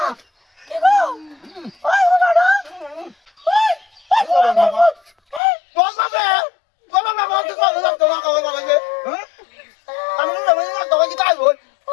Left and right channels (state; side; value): drops out; right; at 5.4 s